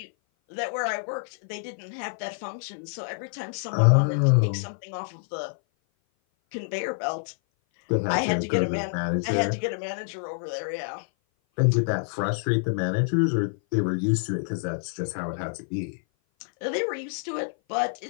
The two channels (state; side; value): silent; right; 56 dB below the other